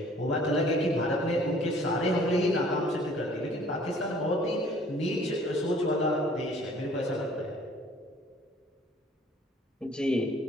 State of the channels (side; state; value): both; normal; correlation 0.55